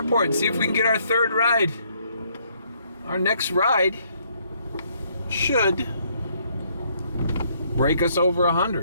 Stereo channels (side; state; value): both; inverted; correlation -0.69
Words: and see if we can get our third ride. Our next ride should break us over